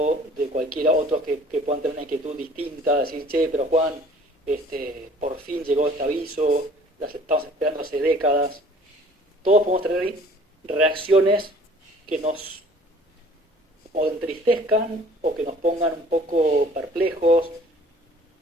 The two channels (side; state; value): both; normal; correlation 0.52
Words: de cualquiera otro que puedan tener una inquietud distinta, decir, che, pero Juan, por fin llegó este aviso, las estamos esperando hace décadas. Todos podemos tener reacciones que nos o entristezcan o que nos pongan un poco perplejos